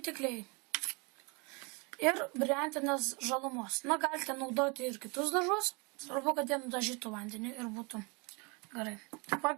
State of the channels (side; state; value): left; quieter; 30.5 dB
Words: kliai. Ir briantinės žalumos. Galite naudoti ir kitus dažus. Svarbu, kad jie nudažytų vandenį ir būtų gerai. Taip